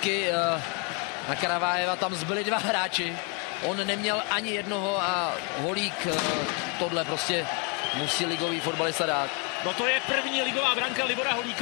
Na Karavájeva tam zbyli dva hráči. On neměl ani jednoho a Holík tohle prostě musí ligový fotbalista dát. No to je první ligová branka Libora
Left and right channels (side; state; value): right; quieter; 28.1 dB